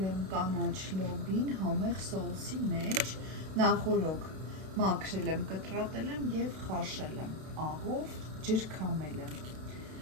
եմ կանաչ լոբին համեղ սոուսի մեջ, նախօրոք մաքրել եմ, կտրատել եմ և խաշել եմ, աղով ջրքամել եմ։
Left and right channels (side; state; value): left; late; 32 ms